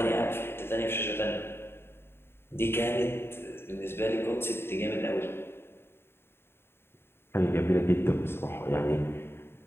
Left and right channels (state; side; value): late; right; 0.11 ms